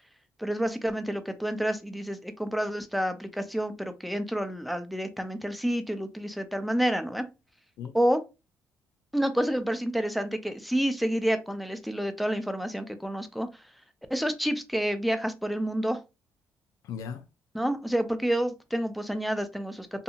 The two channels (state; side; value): normal; both; correlation 0.96